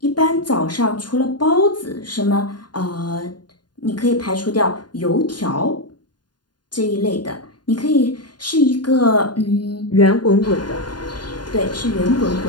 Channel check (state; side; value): late; right; 0.70 ms